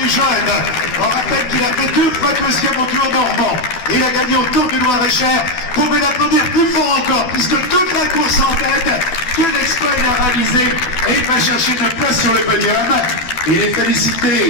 jeunes. On rappelle qu'il a fait 2 fois 2e au Tour normand. Il a gagné au Tour du Loir-et-Cher. Vous pouvez l'applaudir plus fort encore, puisque toute la course en tête, quel exploit il a réalisé. Et il va chercher une place sur sur le podium et les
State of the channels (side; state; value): right; late; 12 ms